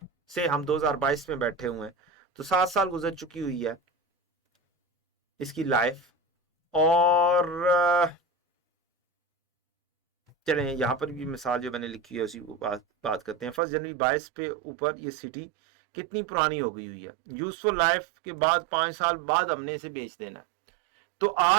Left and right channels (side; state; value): left; drops out; at 13.6 s